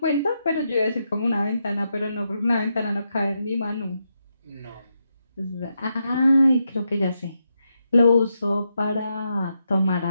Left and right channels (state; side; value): inverted; both; correlation -0.83